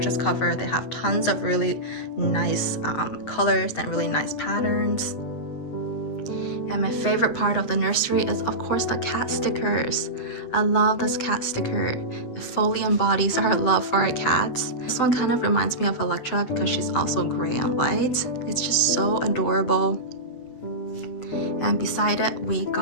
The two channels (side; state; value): right; late; 7.9 ms